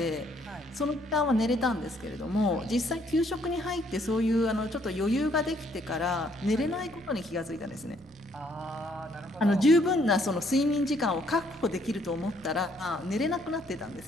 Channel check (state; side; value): normal; both; correlation 0.67